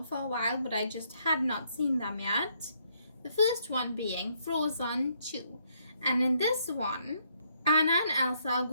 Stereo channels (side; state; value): both; inverted; correlation -0.72